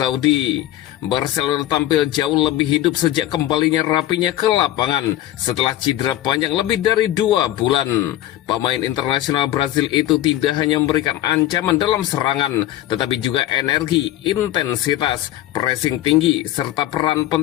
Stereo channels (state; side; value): quieter; right; 13.9 dB